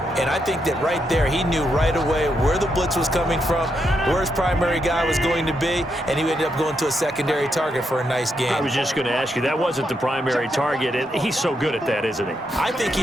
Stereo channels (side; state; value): both; normal; correlation 0.81